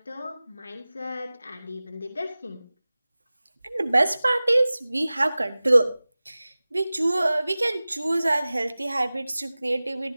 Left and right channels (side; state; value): both; inverted; correlation -0.98